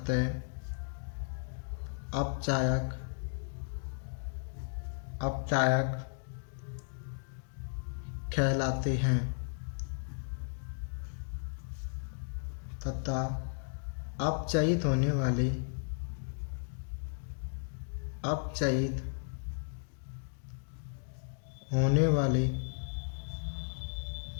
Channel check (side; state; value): right; silent; digital silence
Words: अपचायक कहलाते हैं तथा अपचयित होने वाले